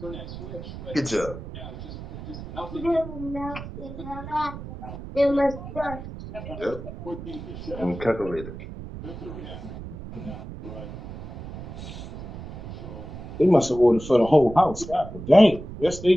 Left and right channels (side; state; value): right; noise; rumble, 11 dB below the sound